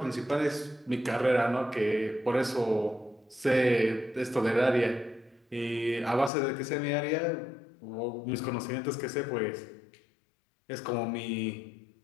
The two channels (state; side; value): drops out; right; at 6.3 s